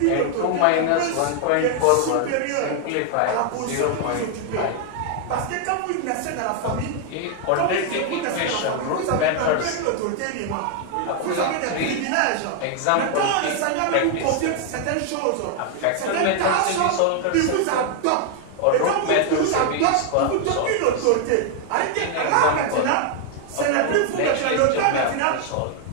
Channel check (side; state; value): both; different; correlation 0.00